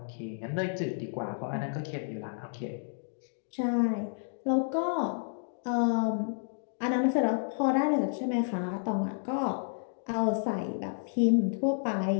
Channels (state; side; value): silent; right; digital silence